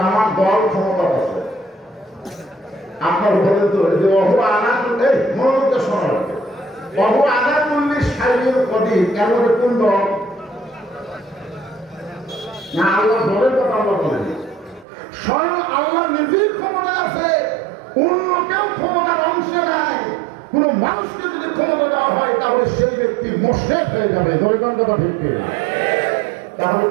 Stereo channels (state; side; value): drops out; left; at 14.9 s